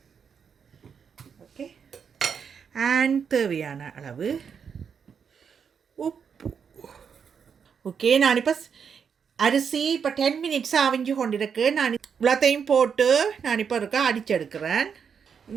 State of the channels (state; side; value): quieter; left; 6.8 dB